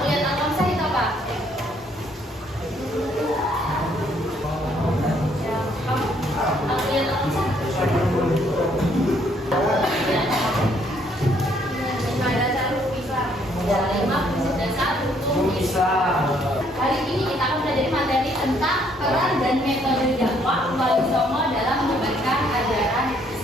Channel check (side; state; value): both; normal; correlation 0.67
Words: Al-Khamsah itu apa? Ya, kamu Al-Kulliyat Al-Khamsah? Ada satu Islam, ada 5 prinsip dasar hukum Islam. Hari ini kita akan belajar materi tentang peran dan metode dakwah Wali Songo dalam menyebarkan ajaran